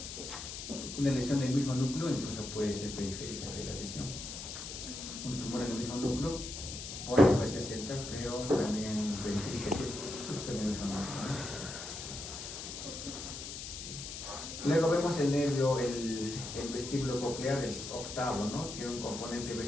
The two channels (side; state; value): left; noise; hiss, 8 dB below the sound